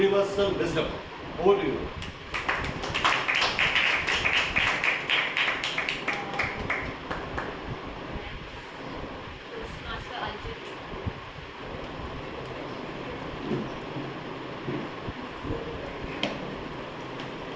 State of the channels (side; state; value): both; identical; correlation 1.00